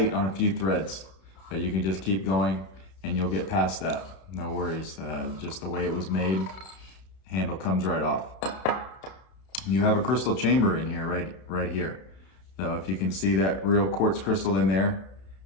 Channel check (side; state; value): right; late; 31 ms